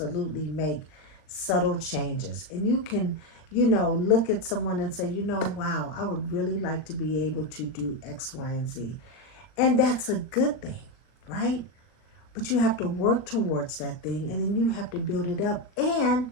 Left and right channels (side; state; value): right; late; 39 ms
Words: make subtle changes, and you can, look at someone and say, wow, I would really like to be able to do X, Y, and Z. And that's a good thing, right? But you have to work towards that thing, and then you have to build it up, and